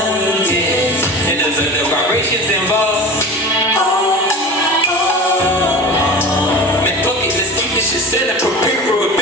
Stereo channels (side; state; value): both; normal; correlation 0.34